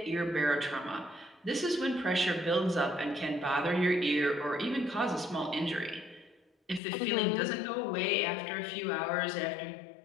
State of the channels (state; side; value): drops out; right; at 6.8 s